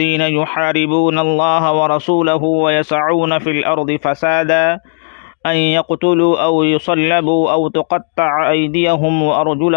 یحاربون اللہ ورسولہ ویسعون فی الارض فسادا ان يقتلوا او يصلبوا او تقطع ايديهم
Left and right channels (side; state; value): right; silent; digital silence